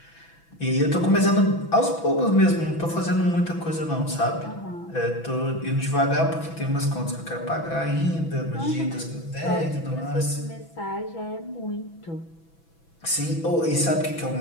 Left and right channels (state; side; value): late; right; 6.1 ms